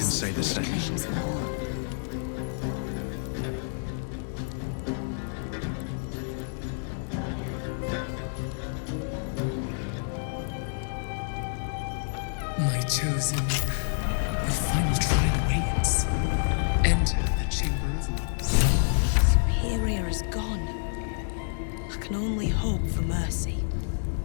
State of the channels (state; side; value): silent; right; digital silence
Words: say the which same. claims them all. My chosen, the final trial awaits. Enter the Chamber of Loss. Superior is gone. I can only hope for mercy.